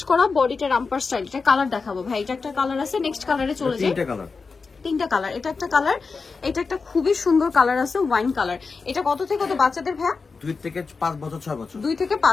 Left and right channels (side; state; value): right; quieter; 4.6 dB